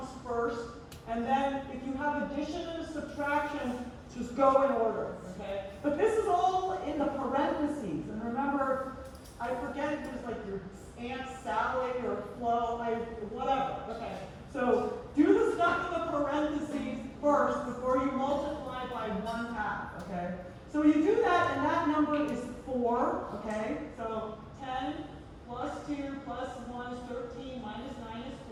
first, and then if you have addition and subtraction, just go in order, okay? But this is all in the parentheses, and remember, I forget if it was like your Aunt Sally or Flo, whatever, okay? So do the stuff in the parentheses first before you multiply by 1/2, okay? So you do that, and that number is 4, okay? So 10 plus 2 plus 1 is 13, minus 9 is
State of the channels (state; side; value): identical; both; correlation 1.00